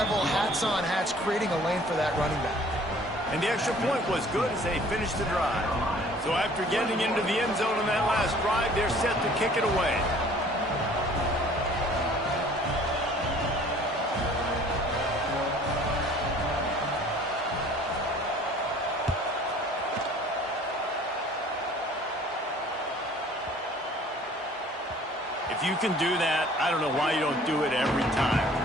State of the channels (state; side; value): normal; both; correlation 0.52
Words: hats on hats, creating a lane for that running back. And the extra point was good as they finished the drive. So after getting into the end zone on that last drive, they're set to kick it away. If you can do that, I don't know why you don't do it every time.